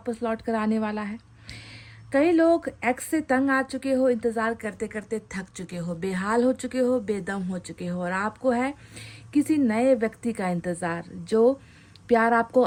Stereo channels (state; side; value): identical; both; correlation 1.00